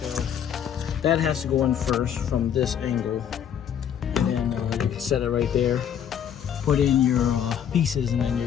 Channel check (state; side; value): quieter; right; 9.0 dB